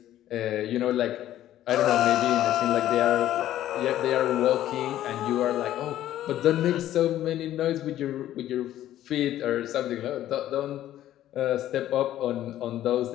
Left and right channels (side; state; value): right; quieter; 12.8 dB